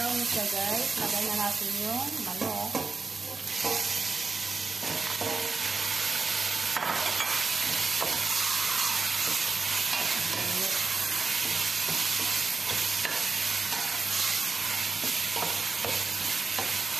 siya guys. Lagyan na natin yung manok.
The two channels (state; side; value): quieter; left; 4.2 dB